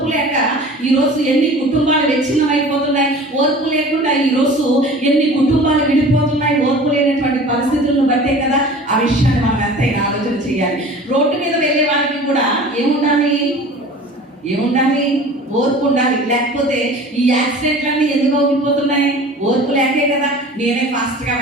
లేక ఈరోజు ఎన్ని కుటుంబాలు విచ్ఛిన్నం అయిపోతున్నాయి. ఓర్పు లేకుండా ఈరోజు ఎన్ని కుటుంబాలు విడిపోతున్నాయి. ఓర్పు లేనటువంటి పరిస్థితులను బట్టే కదా. ఆ విషయాన్ని మనం ఎంతైనా ఆలోచన చేయాలి. రోడ్డు మీద వెళ్ళే వారికి కూడా ఏముండాలి? ఓర్పు ఉండాలి. లేకపోతే ఈ యాక్సిడెంట్లన్నీ ఎందుకు అవుతున్నాయి? ఓర్పు లేకే కదా. నేనే ఫాస్ట్గా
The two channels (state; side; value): normal; both; correlation 0.42